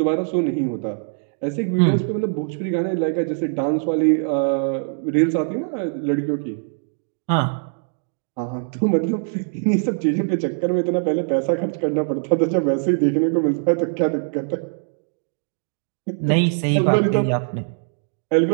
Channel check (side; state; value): left; silent; digital silence